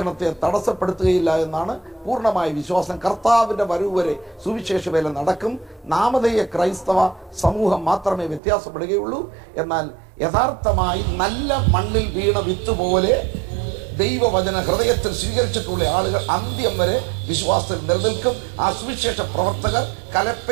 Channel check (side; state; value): left; drops out; at 8.4 s